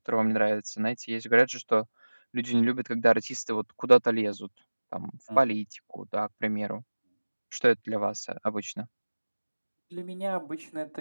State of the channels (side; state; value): both; inverted; correlation -1.00